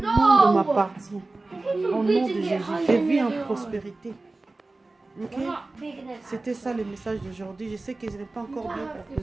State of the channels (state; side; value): quieter; left; 3.2 dB